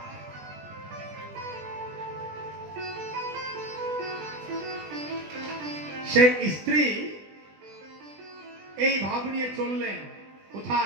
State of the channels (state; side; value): late; left; 20 ms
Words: সেই স্ত্রী এই ভাব নিয়ে চললেন